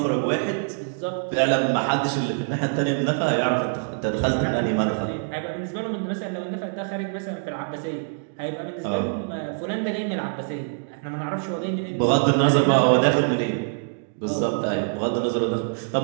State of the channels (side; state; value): left; silent; digital silence